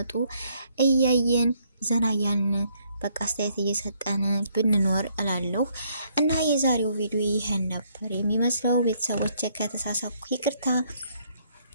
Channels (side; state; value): both; inverted; correlation -0.69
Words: እያየን ዘና እያልን በቃ አስተያየት እየሰጠን ብንኖር እላለሁ። እና የዛሬው ቪዲዮ ይሄን ነበር የሚመስለው። ቤተሰቦች ከተሳሳኩ ይቅርታ።